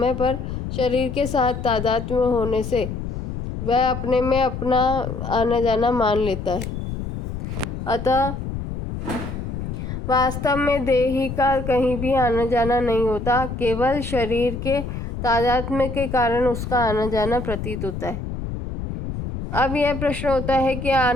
है, पर शरीर के साथ तादात्म्य होने से वह अपने में अपना आना जाना मान लेता है। अतः वास्तव में देही का कहीं भी आना जाना नहीं होता, केवल शरीर के तादात्म्य के कारण उसका आना जाना प्रतीत होता है। अब यह प्रश्न होता है कि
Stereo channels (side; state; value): left; noise; rumble, 6 dB below the sound